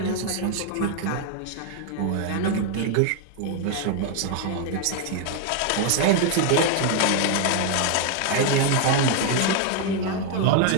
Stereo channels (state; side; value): different; both; correlation 0.00